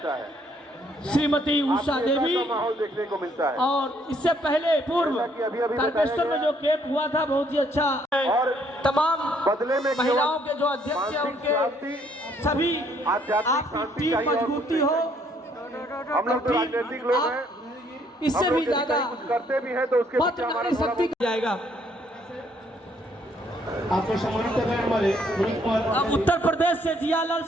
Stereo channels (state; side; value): normal; both; correlation 0.67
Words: श्रीमती उषा देवी माहौल देखने को मिलता है। और इससे पहले पूर्व तारकेश्वर में जो कैंप हुआ था बहुत ही अच्छा। और तमाम बदले में महिलाओं के जो अध्यक्ष हैं उनके सभी आपकी टीम मजबूती हो। हम लोग तो राजनीतिक लोग हैं, इससे भी ज्यादा कुछ करते भी हैं तो उसके पीछे हमारा शक्ति जाएगा। आपको सम्मानित कर रहे हैं हमारे अब उत्तर प्रदेश से जियालाल